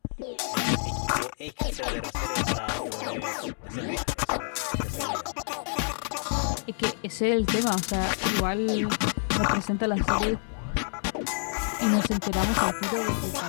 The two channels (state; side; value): silent; right; digital silence